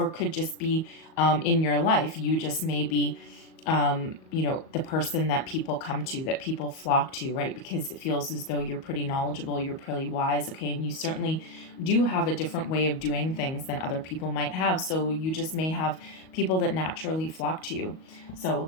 could just be in your life, you just may be the person that people come to, that people flock to, right? Because it feels as though you're pretty knowledgeable, you're pretty wise, okay? And you certainly do have a different way of doing things than other people might have. So you just may have people that naturally flock to you.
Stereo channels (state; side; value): late; right; 38 ms